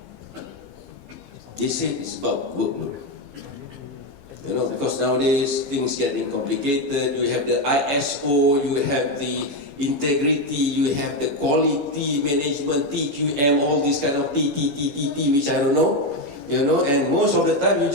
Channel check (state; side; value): late; left; 14 ms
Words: They say it's about workload. Because nowadays things getting complicated. You have the ISO, you have the integrity, you have the quality management, TQM, all these kind of TTTTT, which I don't know. And most of the time you